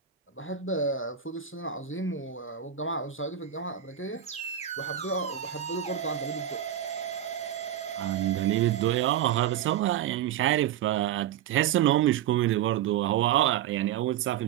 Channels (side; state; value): left; quieter; 10.4 dB